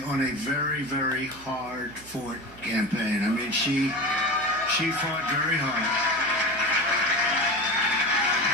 on a very, very hard-fought campaign. I mean, she fought very hard.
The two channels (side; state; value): right; noise; hum, 22 dB below the sound